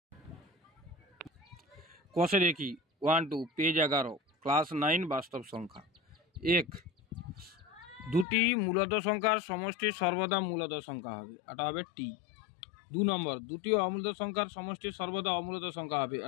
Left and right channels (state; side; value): drops out; right; at 8.2 s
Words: কষে দেখি 1-2 পেজ 11 ক্লাস 9 বাস্তব সংখ্যা। 1, দুটি মূলদ সংখ্যার সমষ্টি সর্বদা মূলদ সংখ্যা হবে, এটা হবে টি। 2 নম্বর, দুটি অমূলদ সংখ্যার সমষ্টি সর্বদা অমূলদ সংখ্যা হবে,